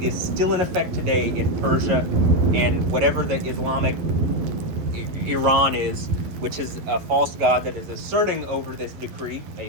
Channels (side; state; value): left; late; 11 ms